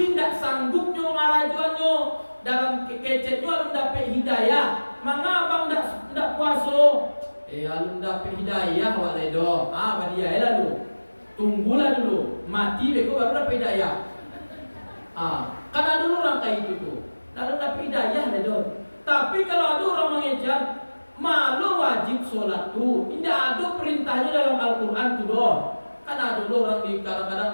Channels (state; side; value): inverted; both; correlation -1.00